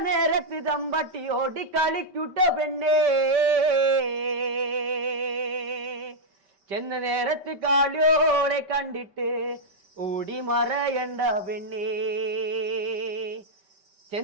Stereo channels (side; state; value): left; late; 5.2 ms